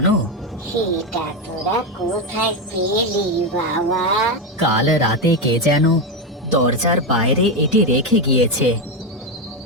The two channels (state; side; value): normal; both; correlation 0.10